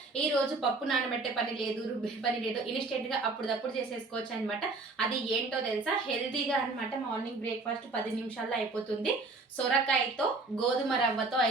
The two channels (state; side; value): quieter; left; 3.5 dB